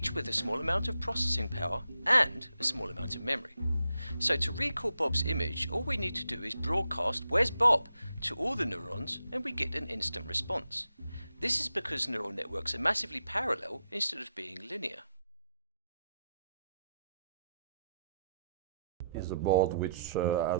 with a small amount of processing power and a small amount of memory. So to recall Bob's image, all we need to do is broadcast "Where's Bob?" to all the neurons and we get an instant response. This is because neural networks are massively parallel instead of being linear. Is a board which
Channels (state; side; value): inverted; both; correlation -0.81